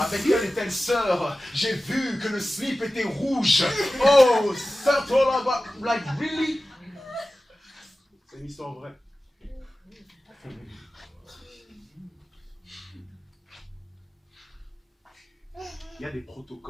telle et telle sœur. J'ai vu que le slip était rouge. Oh, ça toi là-bas, like really? C'est une histoire vraie. Il y a des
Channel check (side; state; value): both; normal; correlation 0.95